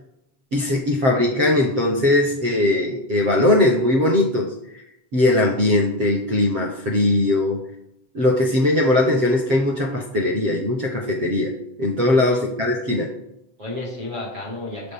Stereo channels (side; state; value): left; late; 7.6 ms